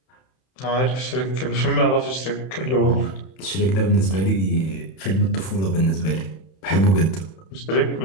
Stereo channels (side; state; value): right; late; 31 ms